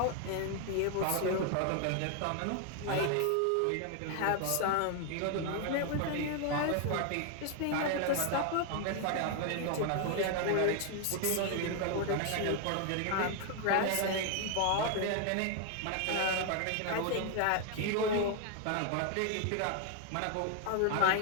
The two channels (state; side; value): different; both; correlation 0.00